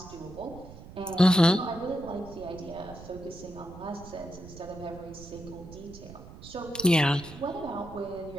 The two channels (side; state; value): right; noise; rumble, 15 dB below the sound